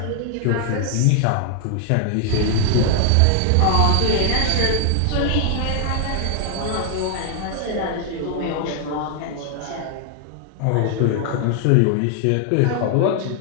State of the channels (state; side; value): different; both; correlation 0.00